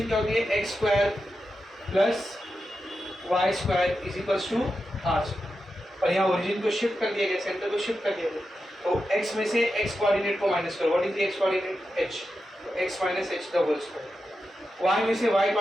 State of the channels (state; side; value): normal; both; correlation 0.89